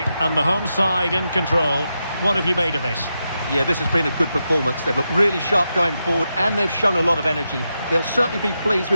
and the home side in control. What have you made of this? Yeah, this has been a good performance. They've looked really sharp going forward, and they've shown a lot of energy. They'll certainly be pleased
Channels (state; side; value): inverted; both; correlation -0.87